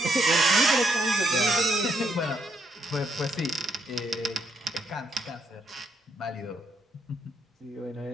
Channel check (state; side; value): normal; both; correlation 0.75